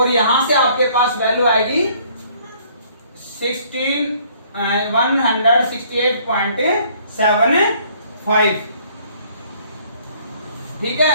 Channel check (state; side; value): inverted; both; correlation -0.61